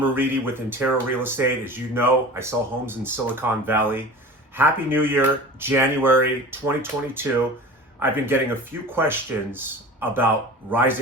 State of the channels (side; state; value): both; normal; correlation 0.37